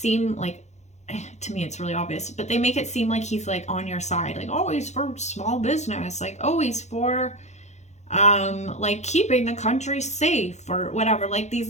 like, to me it's really obvious, but they make it seem like he's like on your side, like, oh, he's for small business, like, oh, he's for like keeping the country safe or whatever, like these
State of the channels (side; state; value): right; late; 0.33 ms